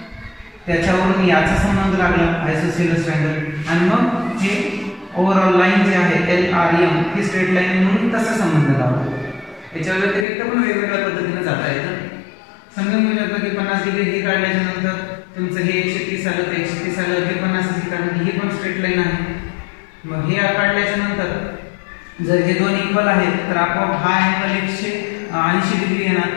त्याच्यावरून याचा संबंध लागला आयसोसेलेस ट्रायंगल, आणि मग हे ओव्हरऑल लाईन जे आहे LRM ही स्ट्रेट लाईन म्हणून तसा संबंध लावला. याच्या व्यतिरिक्त पण वेगवेगळ्या पद्धतीने जाता येतं. समजून घेऊ शकतो की 50 डिग्री हे काढल्याच्या नंतर तुमचं हे 130 आलं, तर 130 आलं, हे 50 काढलं, ही पण स्ट्रेट लाईन आहे. मग हे काढल्याच्या नंतर जर हे दोन इक्वल आहेत तर आपोआप हा अँगल 180 डिग्री येणार,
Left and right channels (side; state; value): right; drops out; at 10.2 s